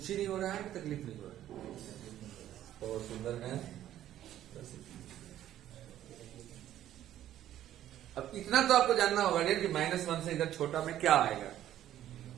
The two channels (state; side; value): quieter; left; 12.2 dB